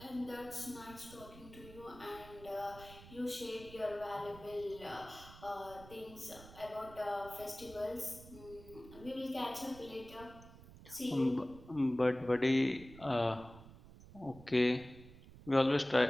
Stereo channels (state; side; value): noise; right; rumble, 18 dB below the sound